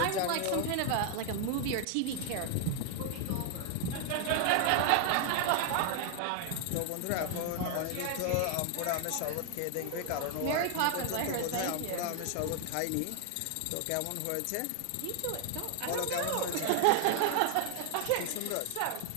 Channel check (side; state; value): both; different; correlation 0.00